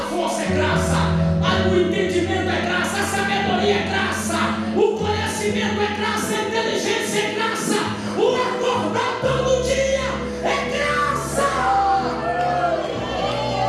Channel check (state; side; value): identical; both; correlation 1.00